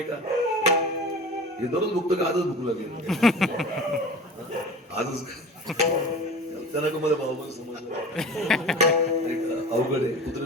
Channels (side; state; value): both; normal; correlation 0.36